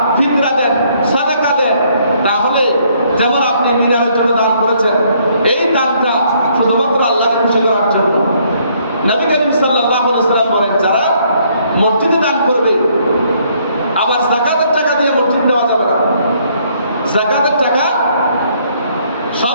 ফিতরা দেন, সাদাকা দেন, তাহলে যেমন আপনি মিনারের জন্য দান করেছেন, এই দানটা শুধুমাত্র আল্লাহকে খুশি করার জন্য। নবী করিম সাল্লাল্লাহু আলাইহি ওয়াসাল্লাম বলেন যারা মসজিদে দান করবে, আবার যাকাতের টাকা দিয়ে মসজিদ দেওয়া যাবে না। যাকাতের টাকা সব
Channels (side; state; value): both; inverted; correlation -0.67